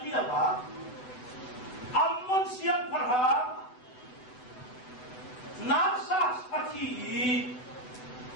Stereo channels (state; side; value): late; right; 8.0 ms